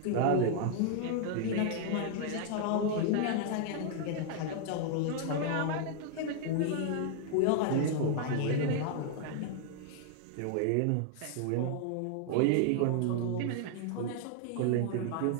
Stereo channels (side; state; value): both; different; correlation 0.00